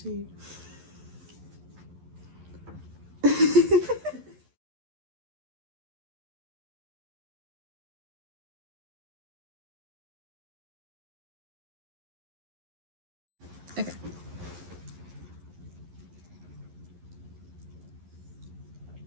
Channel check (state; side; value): late; left; 11 ms